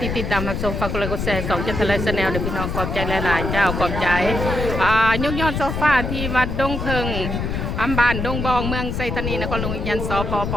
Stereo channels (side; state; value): left; noise; rumble, 3 dB below the sound